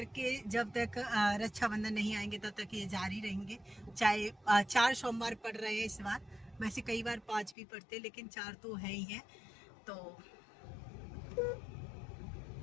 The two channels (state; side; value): drops out; right; at 7.6 s